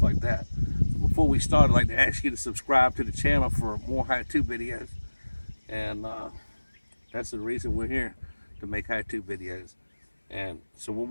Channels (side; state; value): both; inverted; correlation -1.00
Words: like that. So before we start, I'd like to ask you to subscribe to the channel for more how-to videos. And that's the reason we're here, to make how-to videos. And so what